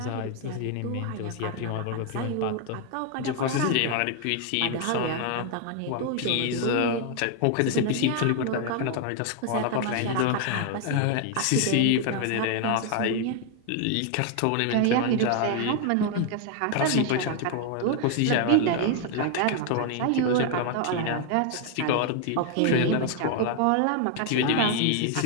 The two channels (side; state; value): both; different; correlation 0.00